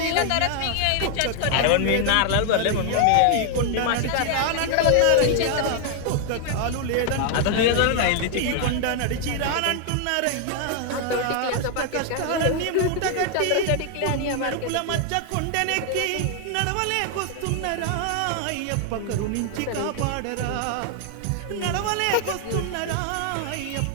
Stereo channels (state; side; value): different; both; correlation 0.00